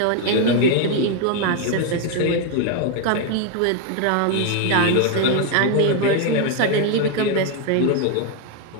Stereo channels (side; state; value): both; different; correlation 0.01